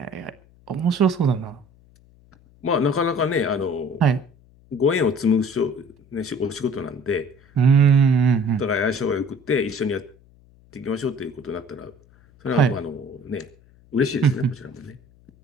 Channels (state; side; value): noise; left; hum, 28 dB below the sound